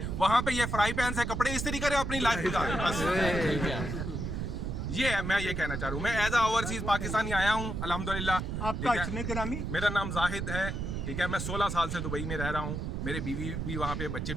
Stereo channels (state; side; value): noise; right; rumble, 3 dB below the sound